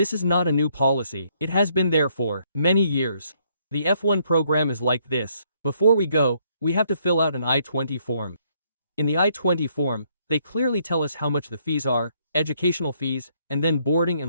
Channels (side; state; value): both; inverted; correlation -0.70